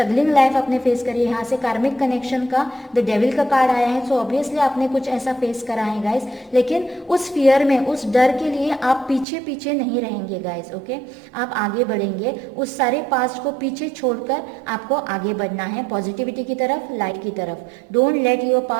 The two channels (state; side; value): drops out; left; at 9.2 s